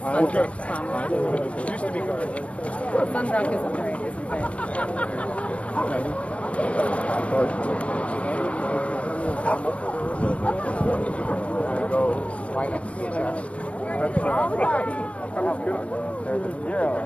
promise. Used to be guard. Sunbrook isn't very, isn't bad.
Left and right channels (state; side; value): late; right; 0.063 ms